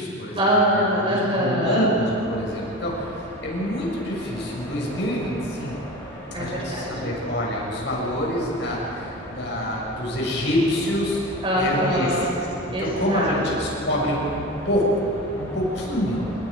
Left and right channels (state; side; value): normal; both; correlation 0.31